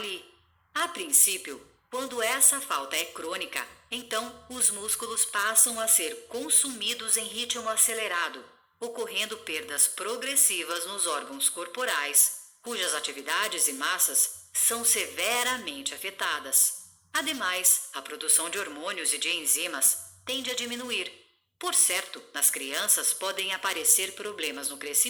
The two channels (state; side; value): identical; both; correlation 1.00